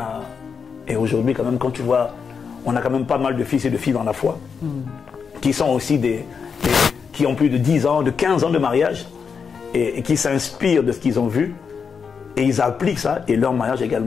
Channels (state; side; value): quieter; right; 6.0 dB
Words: aujourd'hui, quand même, quand tu vois, on a quand même pas mal de fils et de filles dans la foi qui sont aussi qui ont plus de 10 ans, de 15 ans de mariage et qui s'inspirent de ce qu'ils ont vu et ils appliquent ça et leur mariage est